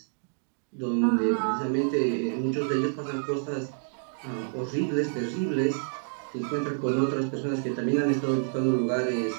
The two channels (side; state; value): left; silent; digital silence